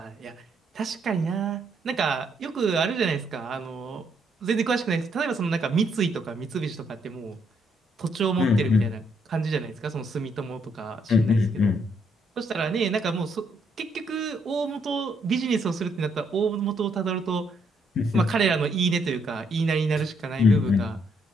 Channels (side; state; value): both; normal; correlation 0.73